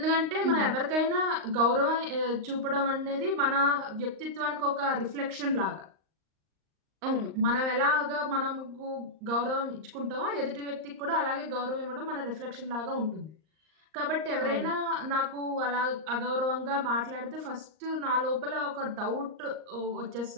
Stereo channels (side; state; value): left; late; 38 ms